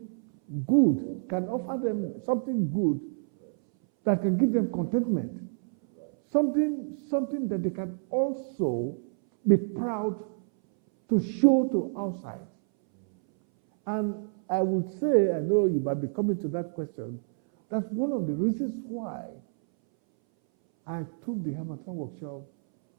good, can offer them something good that can give them contentment. Something that they can also be proud to show to outside. And I would say, I know you might be coming to that question, that's one of the reasons why I took the Hamilton workshop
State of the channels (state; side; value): silent; left; 59 dB below the other